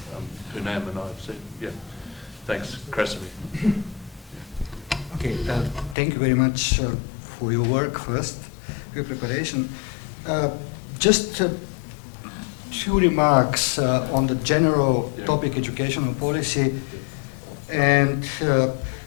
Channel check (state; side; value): drops out; right; at 6.0 s